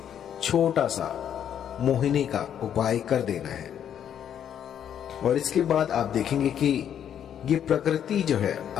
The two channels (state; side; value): quieter; right; 9.3 dB